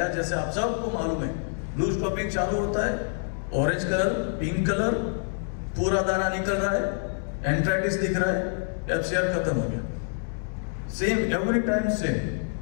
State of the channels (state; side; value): silent; right; 59 dB below the other